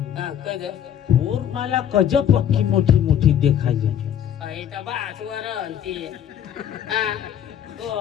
कद और मला कज पक्की मोठी मोठी देखायची तर बासवर ती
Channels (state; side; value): quieter; right; 9.8 dB